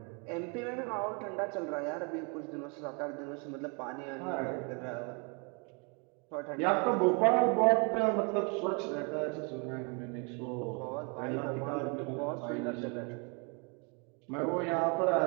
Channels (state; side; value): quieter; left; 34.5 dB